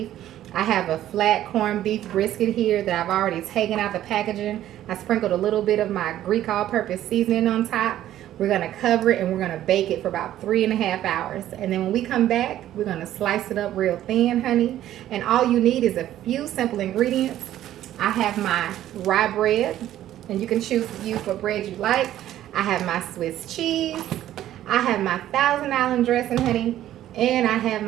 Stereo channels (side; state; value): left; quieter; 12.7 dB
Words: I have a flat corned beef brisket here that I've already taken out the packaging. I sprinkled a little bit of my Greek all-purpose seasoning on top. We're going to cover it and we're going to bake it for about 3.5 hours. And then when we come back, we're going to slice it up real thin, honey. And all you need is a few simple ingredients. I have my rye bread, and you can choose to use what bread you like. I have my Swiss cheese. I have my Thousand Island dressing, honey. And I have